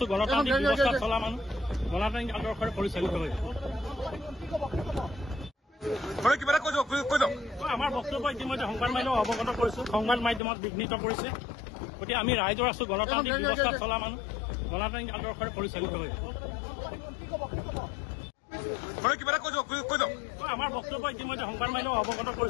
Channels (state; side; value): drops out; right; at 10.4 s